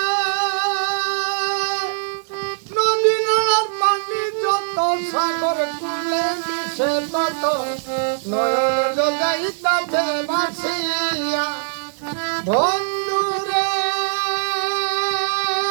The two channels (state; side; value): silent; left; digital silence